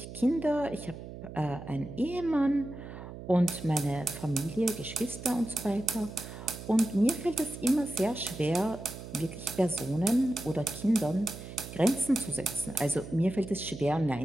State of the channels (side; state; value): right; noise; hum, 12 dB below the sound